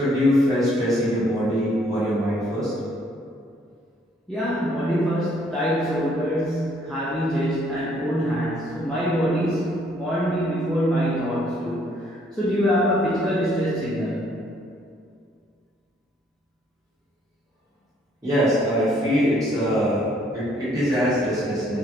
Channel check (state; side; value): normal; both; correlation 0.65